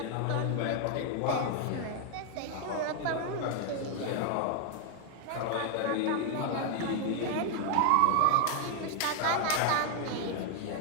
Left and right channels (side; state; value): both; different; correlation 0.00